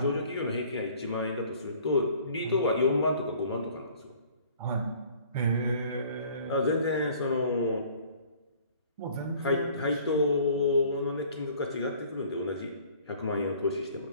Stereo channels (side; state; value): both; inverted; correlation -0.53